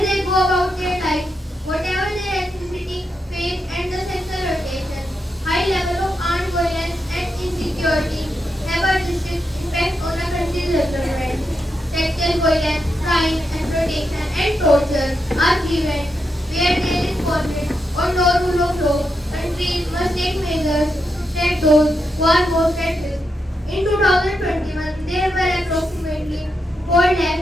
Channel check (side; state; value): both; normal; correlation 0.84